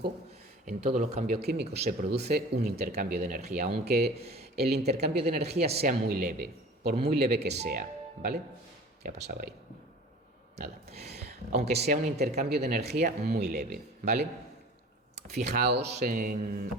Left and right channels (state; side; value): normal; both; correlation 0.42